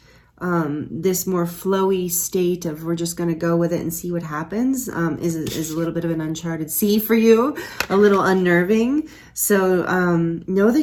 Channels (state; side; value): identical; both; correlation 1.00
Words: this more flowy state of we're just going to go with it and see what happens is a little bit of an uncharted sea for you, a little unnerving. So know